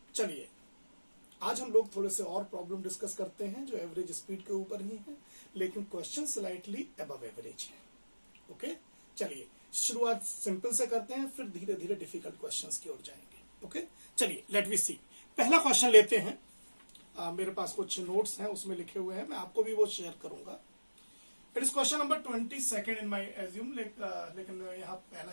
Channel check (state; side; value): inverted; both; correlation -1.00